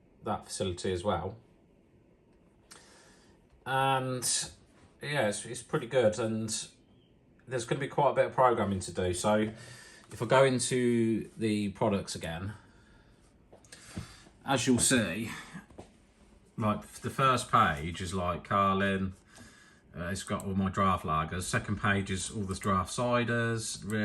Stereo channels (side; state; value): both; identical; correlation 1.00